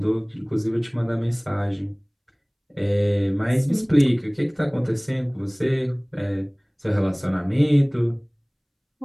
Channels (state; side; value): identical; both; correlation 1.00